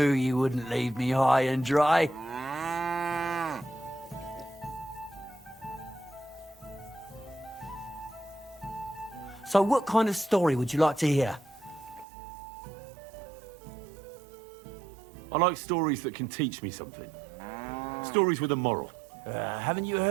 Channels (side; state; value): left; drops out; at 12.1 s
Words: you wouldn't leave me high and dry. So what kind of story would you like to hear? I like stories that can teach me something. Stories with a moral. Haven't you